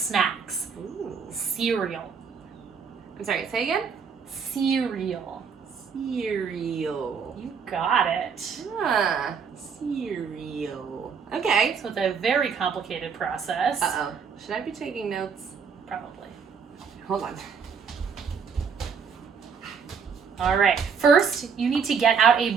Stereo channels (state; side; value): quieter; left; 6.2 dB